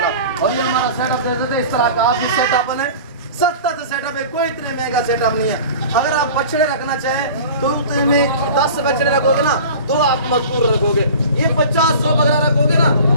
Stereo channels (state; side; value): inverted; both; correlation -0.39